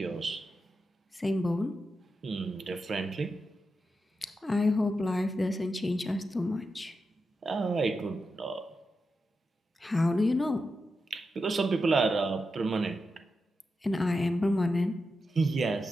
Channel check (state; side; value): normal; both; correlation 0.88